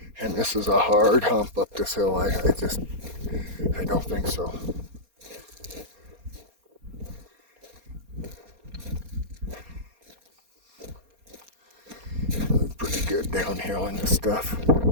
And this is a hard hump up this hill. I don't think so. following this stuff.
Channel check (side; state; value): left; late; 4.3 ms